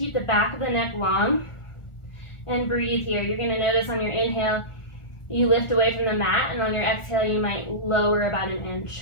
the back of the neck long. And breathe here. You're going to notice on your inhale, you lift away from the mat, and on your exhale, you might lower about an inch.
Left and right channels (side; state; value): right; late; 1.4 ms